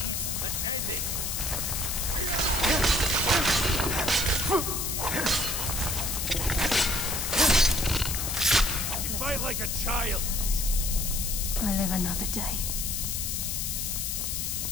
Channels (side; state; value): left; noise; hiss, 1 dB below the sound